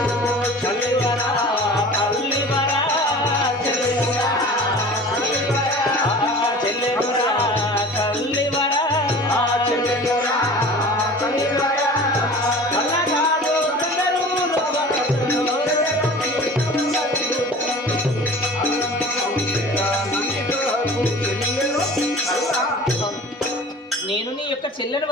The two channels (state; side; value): normal; both; correlation 0.41